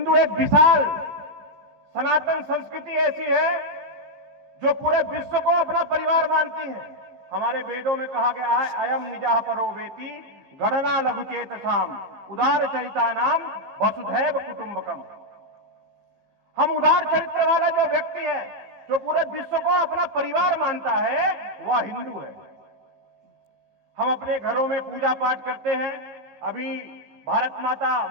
एक विशाल सनातन संस्कृति ऐसी है जो पूरे विश्व को अपना परिवार मानती है। हमारे वेदों में कहा गया है, अयम निजाह परो वेति गणना लघुचेत साम उदार चरिता नाम वसुधैव कुटुंबकम। हम उदार चरित्र वाला जो व्यक्ति है, जो पूरे विश्व को अपना परिवार मानता है, वह हिंदू है। हम अपने घरों में पूजा पाठ करते हैं। अभी भारत माता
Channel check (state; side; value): late; left; 15 ms